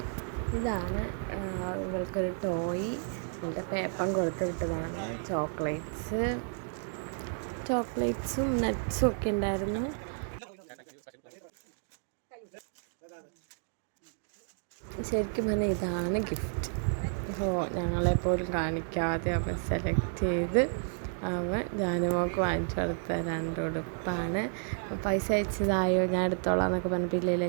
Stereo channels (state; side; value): silent; left; 57 dB below the other